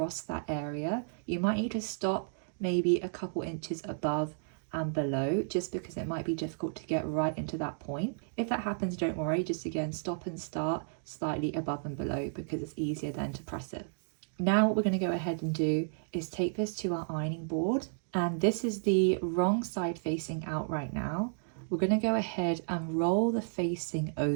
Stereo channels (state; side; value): silent; left; digital silence